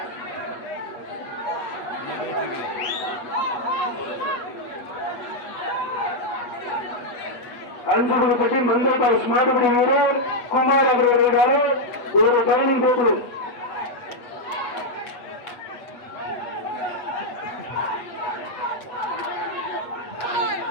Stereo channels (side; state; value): right; late; 8.3 ms